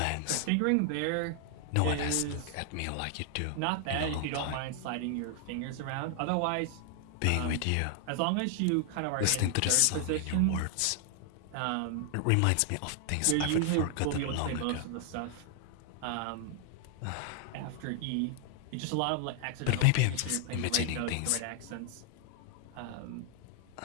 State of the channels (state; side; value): different; both; correlation 0.00